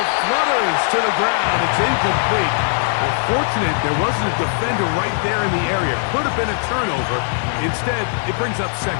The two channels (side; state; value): right; silent; 56 dB below the other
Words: flutters to the ground. It's incomplete. Well, fortunate there wasn't a defender right there in the area. Could have been a turnover. Instead, it brings up